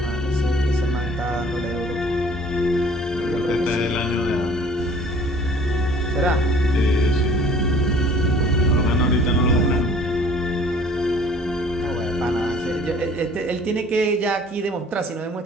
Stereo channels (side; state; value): both; normal; correlation 0.52